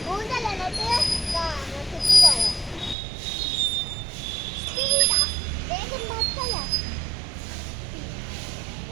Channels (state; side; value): drops out; left; at 3.0 s